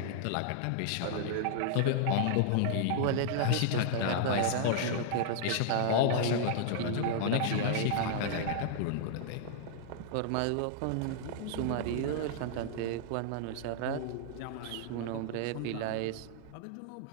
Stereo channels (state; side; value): different; both; correlation -0.01